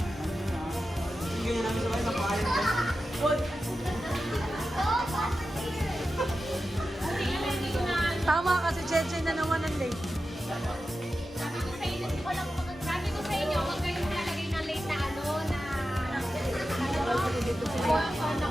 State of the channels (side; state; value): both; normal; correlation 0.92